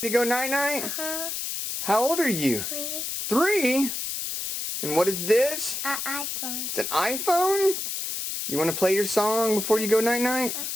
To go night-night? Uh-huh. How old are you? 3. 3? And what is this? An iPhone. It's an iPhone? You want to play your song before you go night-night?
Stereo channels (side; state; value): left; noise; hiss, 4 dB below the sound